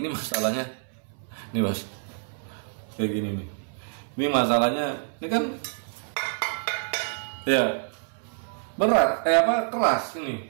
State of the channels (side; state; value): left; silent; 60 dB below the other